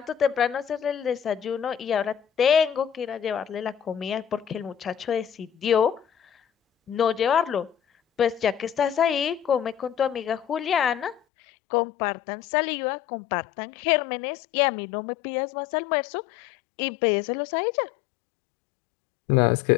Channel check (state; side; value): drops out; right; at 11.2 s